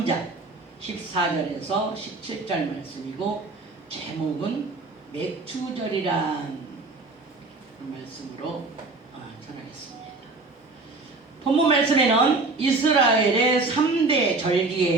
14절에서 17절 말씀이고 제목은 맥추절이란 말씀으로 전하겠습니다. 본문 말씀에는 이스라엘의 3대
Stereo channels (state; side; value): quieter; left; 3.5 dB